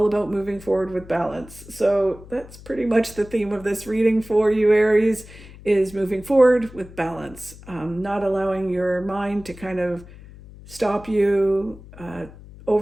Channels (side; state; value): left; noise; hum, 19 dB below the sound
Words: about moving forward with balance. So that's pretty much the theme of this reading for you, Aries, is moving forward with balance, not allowing your mind to kind of stop you,